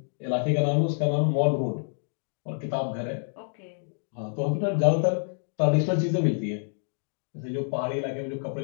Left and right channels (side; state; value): right; silent; 60 dB below the other